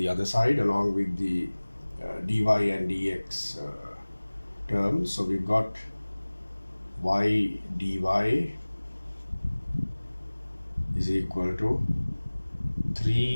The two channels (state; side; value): inverted; both; correlation -1.00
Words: other side, along with the dy and dx terms. So we've got y dy is equal to